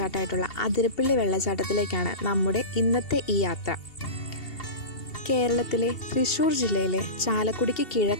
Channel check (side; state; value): right; late; 2.7 ms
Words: അതിരപ്പള്ളി വെള്ളച്ചാട്ടത്തിലേക്കാണ് നമ്മുടെ ഇന്നത്തെ ഈ യാത്ര. കേരളത്തിലെ തൃശ്ശൂർ ജില്ലയിലെ ചാലക്കുടിക്ക്